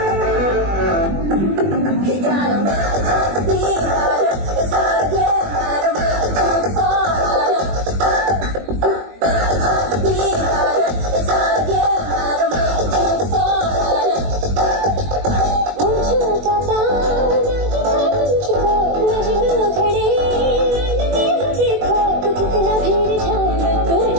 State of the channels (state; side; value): late; left; 21 ms